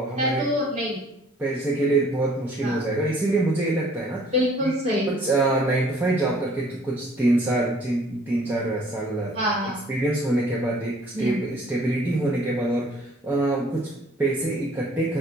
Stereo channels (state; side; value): normal; both; correlation 0.57